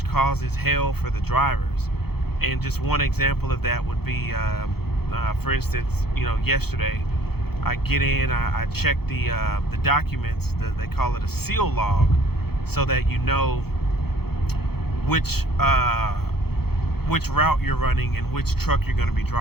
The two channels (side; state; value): right; late; 0.96 ms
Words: causes hell for the drivers. And just one example of that would be, for instance, yesterday I get in, I check the documents. They call it a seal log, so that you know which route you're running and which truck you're going to be